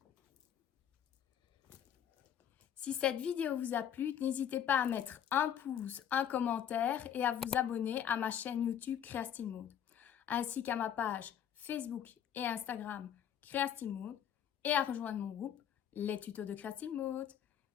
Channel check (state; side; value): quieter; right; 9.5 dB